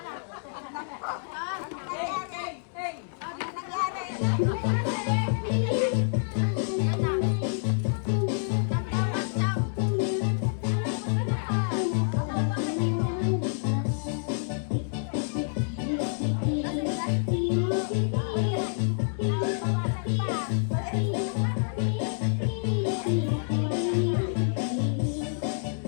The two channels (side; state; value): right; silent; digital silence